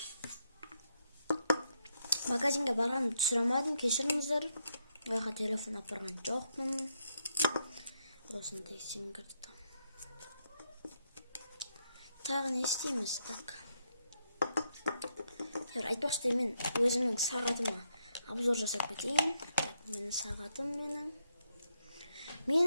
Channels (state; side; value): inverted; both; correlation -0.78